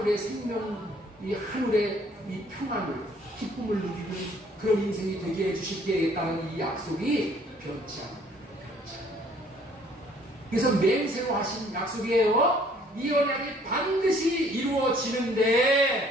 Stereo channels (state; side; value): normal; both; correlation 0.59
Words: 생명, 이 하늘의 이 평안을, 기쁨을 누리는 그런 인생이 되게 해주시겠다는 이 약속이 변치 않습니다. 그래서 맹세로 하신 약속이에요. 이 언약이 반드시